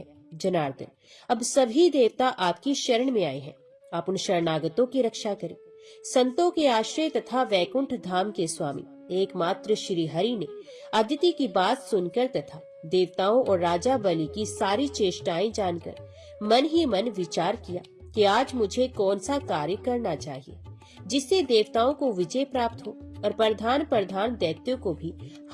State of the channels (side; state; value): both; identical; correlation 1.00